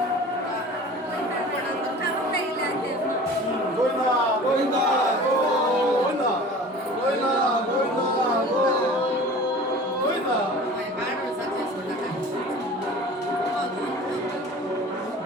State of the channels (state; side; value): normal; both; correlation 0.41